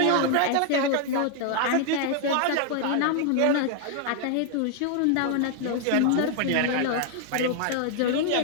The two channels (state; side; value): different; both; correlation 0.00